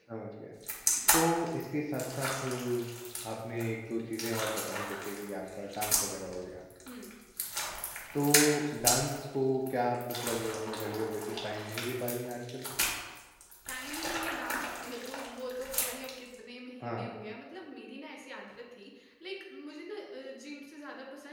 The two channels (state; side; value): identical; both; correlation 1.00